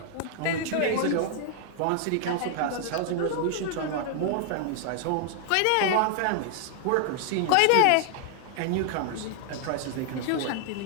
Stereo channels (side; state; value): both; different; correlation 0.00